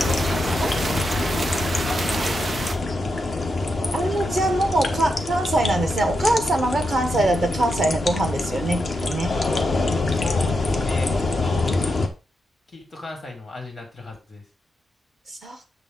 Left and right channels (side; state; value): both; normal; correlation 0.85